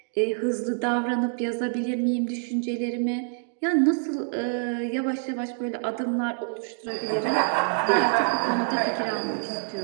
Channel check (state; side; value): silent; left; 61 dB below the other